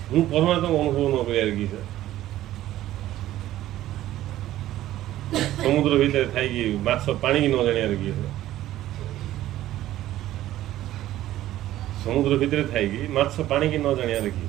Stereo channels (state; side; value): quieter; left; 14.1 dB